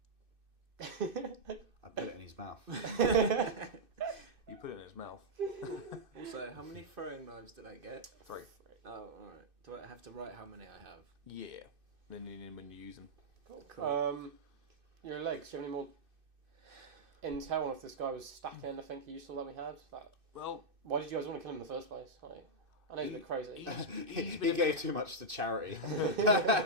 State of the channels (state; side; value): late; left; 2.6 ms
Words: I put it in his mouth. You put it in his mouth. Also, how many throwing knives did I get? 3. Oh, alright. Do I have to write how many I have? Yeah. Then when you use them. Cool. Your legs. Do you have any more intel on if this guy was stacking anything useful that we had? Well, Why did you guys want to kill him in the first place? Like, I know he's a bit crazy. He gave too much to charity.